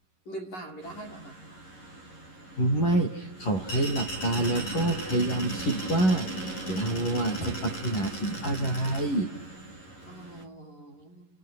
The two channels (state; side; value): late; right; 11 ms